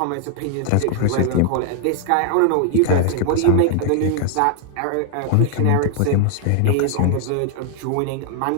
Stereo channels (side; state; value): both; different; correlation 0.00